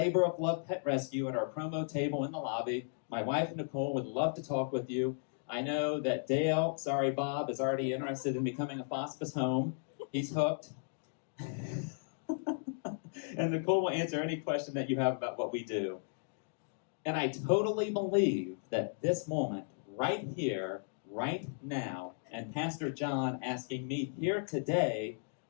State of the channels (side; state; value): right; silent; digital silence